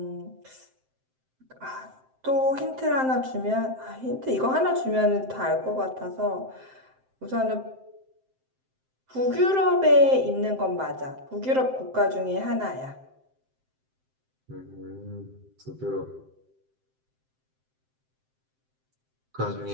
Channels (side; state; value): left; late; 7.7 ms